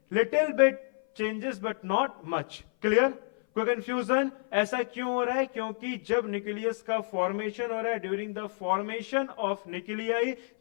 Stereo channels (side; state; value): right; silent; 56 dB below the other